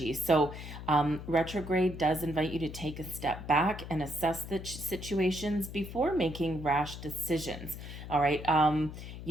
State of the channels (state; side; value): noise; left; hum, 10 dB below the sound